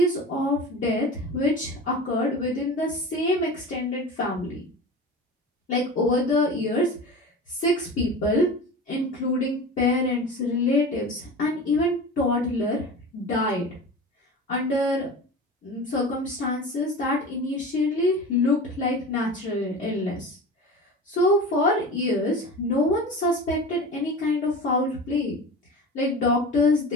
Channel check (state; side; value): normal; both; correlation 0.33